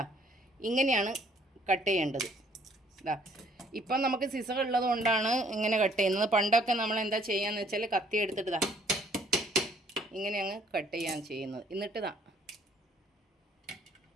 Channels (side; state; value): both; normal; correlation 0.62